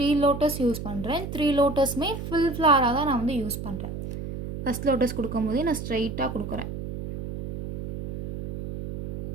லோட்டஸ் யூஸ் பண்ணுறேன். 3 லோட்டஸுமே ஃபுல் ஃப்ளாராக தான் நான் வந்து யூஸ் பண்ணுறேன். ஃபஸ்ட் லோட்டஸ் கொடுக்கும்போதே நான் ஸ்ட்ரைட்டாக கொடுக்குறேன்.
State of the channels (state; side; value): noise; right; hum, 7 dB below the sound